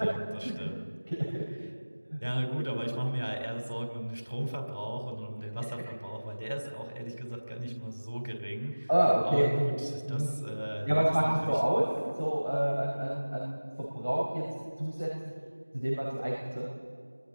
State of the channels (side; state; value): both; inverted; correlation -1.00